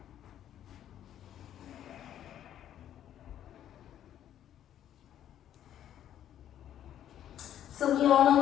So we all know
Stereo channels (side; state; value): right; quieter; 10.9 dB